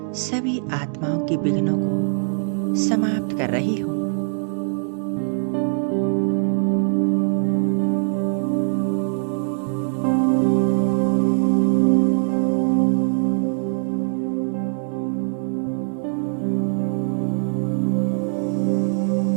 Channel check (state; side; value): silent; left; digital silence